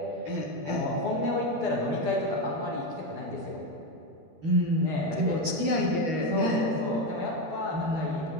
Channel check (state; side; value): late; left; 13 ms